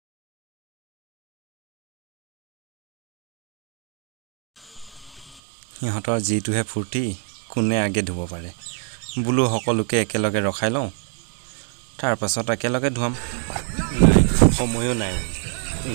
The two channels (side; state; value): left; drops out; at 5.4 s